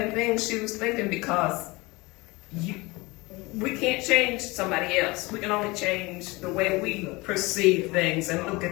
thing she was thinking, because we can't change somebody else. We can only change the way we perceive things and look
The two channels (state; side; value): quieter; right; 23.5 dB